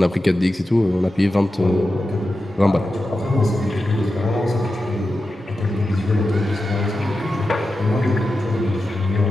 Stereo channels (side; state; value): both; normal; correlation 0.91